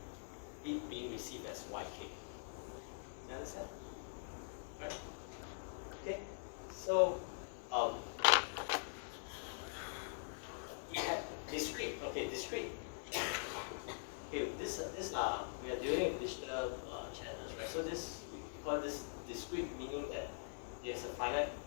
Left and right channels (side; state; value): right; silent; digital silence